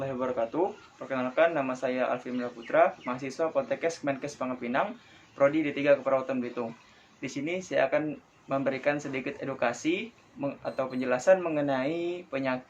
wabarakatuh. Perkenalkan, nama saya Alfi Putra, mahasiswa Poltekkes Kemenkes Pangepinang, Prodi D3 Keperawatan Belitung. Di sini saya akan memberikan sedikit edukasi atau penjelasan mengenai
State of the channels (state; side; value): identical; both; correlation 1.00